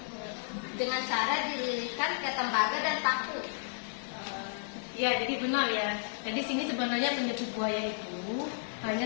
dengan cara dililitkan ke tembaga dan paku. Ya, jadi benar ya. Jadi sini sebenarnya penyebut buaya itu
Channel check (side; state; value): right; silent; digital silence